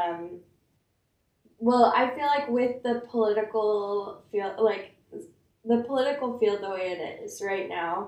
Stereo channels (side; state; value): both; identical; correlation 1.00